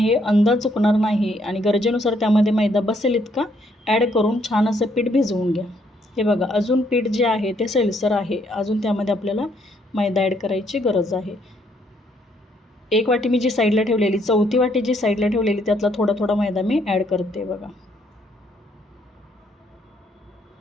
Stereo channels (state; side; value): normal; both; correlation 0.70